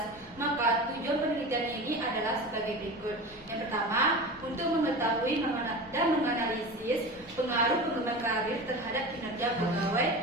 maka tujuan penelitian ini adalah sebagai berikut. Yang pertama, untuk mengetahui dan menganalisis pengaruh pengembangan karir terhadap kinerja pegawai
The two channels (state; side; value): noise; left; rumble, 23 dB below the sound